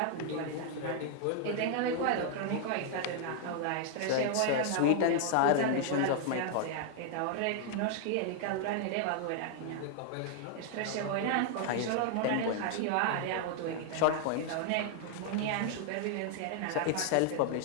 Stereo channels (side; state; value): both; different; correlation 0.00